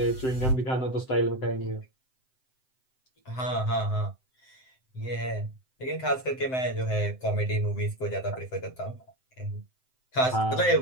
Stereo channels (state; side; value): late; right; 7.8 ms